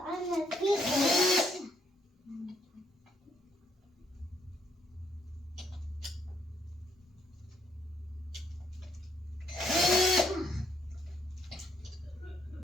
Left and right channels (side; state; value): both; normal; correlation 0.72